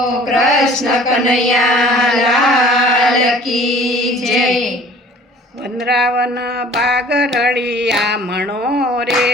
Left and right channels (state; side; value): normal; both; correlation 0.49